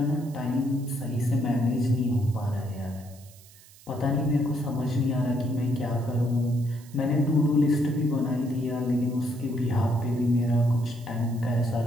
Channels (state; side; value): noise; right; hiss, 24 dB below the sound